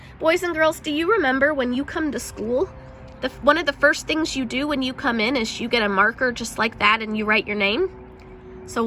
Boys and girls, do you remember when you come to school, one of the first things you do when you come in is you get a marker just like that and you write your name? So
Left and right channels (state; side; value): identical; both; correlation 1.00